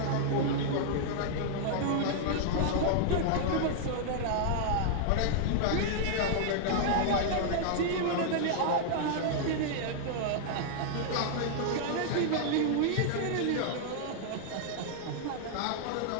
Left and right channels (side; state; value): both; different; correlation -0.01